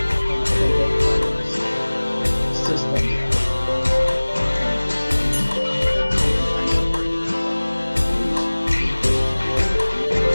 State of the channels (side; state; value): both; inverted; correlation -1.00